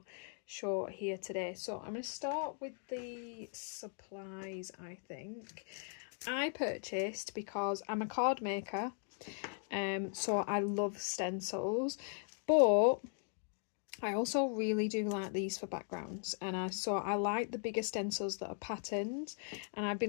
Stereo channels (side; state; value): right; silent; 52 dB below the other